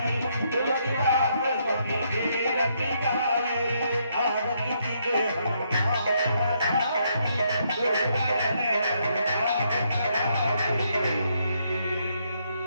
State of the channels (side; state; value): both; inverted; correlation -0.74